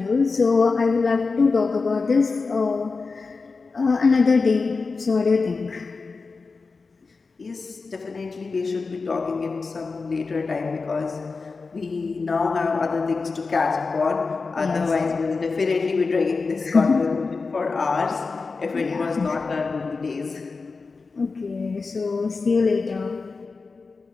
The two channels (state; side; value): quieter; right; 4.3 dB